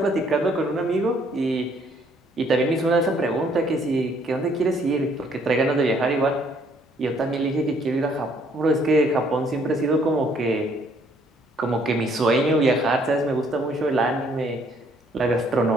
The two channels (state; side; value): normal; both; correlation 0.65